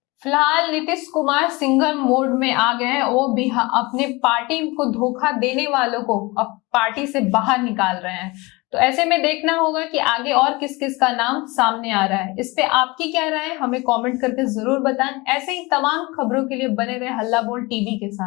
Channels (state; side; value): quieter; right; 24.1 dB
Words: फिलहाल नीतीश कुमार सिंगल मोड में आ गए हैं, वो भी अपने पार्टी को धोखा देने वालों को अब पार्टी से बाहर निकाल रहे हैं। तो ऐसे में देखना होगा कि आगे और किस किस का नाम सामने आ रहा है। इस पे आपकी क्या राय है, हमें कमेंट करके जरूर बताएं। ऐसे ही तमाम खबरों के लिए बने रहे हल्ला बोल टीवी के